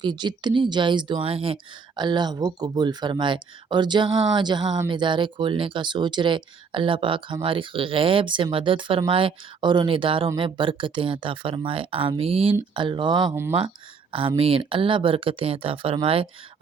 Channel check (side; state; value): left; quieter; 5.5 dB